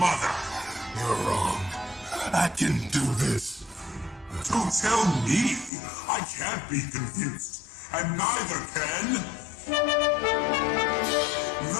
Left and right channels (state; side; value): drops out; right; at 5.7 s